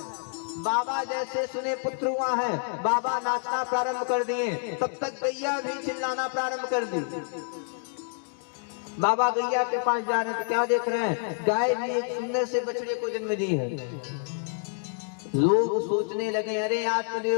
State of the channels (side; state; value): right; silent; digital silence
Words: बाबा जैसे सुने पुत्र हुआ है, बाबा नाचना प्रारंभ कर दिए। तब तक गैया भी चिल्लाना प्रारंभ कर दी। बाबा गैया के पास जा रहे हैं तो क्या देख रहे हैं? गाय भी एक सुंदर से बछड़े को जन्म दी है। लोग सोचने लगे, अरे